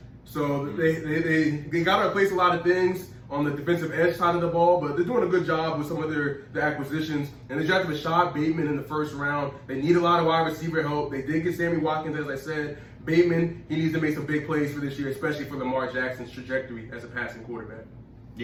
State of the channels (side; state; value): both; identical; correlation 1.00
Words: So they got to replace a lot of things on the defensive edge side of the ball, but they're doing a good job with some of their acquisitions. And they drafted Rashad Bateman in the first round. They need a lot of wide receiver help. They did get Sammy Watkins, as I said. Bateman, he needs to make some big plays for this year, especially for Lamar Jackson's trajectory as a passing quarterback.